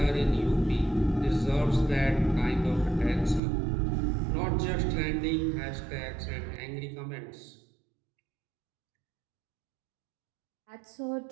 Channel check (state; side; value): drops out; left; at 3.4 s